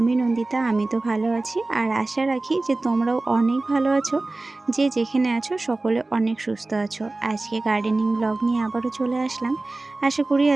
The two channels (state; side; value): quieter; left; 3.1 dB